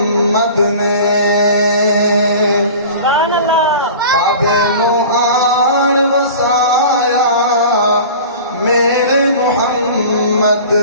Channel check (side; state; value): both; inverted; correlation -0.39